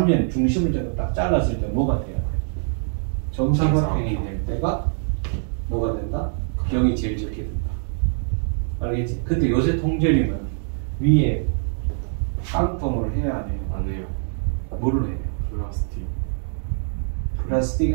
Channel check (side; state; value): left; silent; digital silence